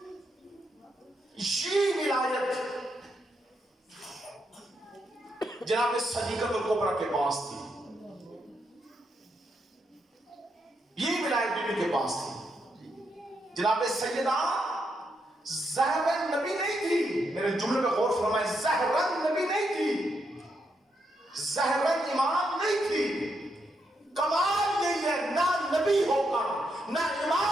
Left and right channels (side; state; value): both; normal; correlation 0.80